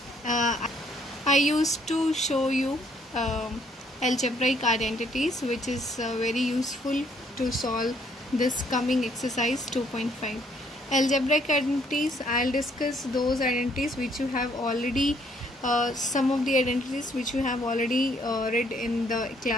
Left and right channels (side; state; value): both; normal; correlation 0.66